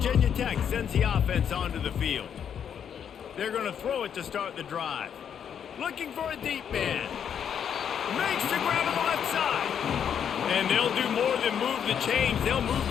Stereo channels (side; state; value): right; quieter; 8.3 dB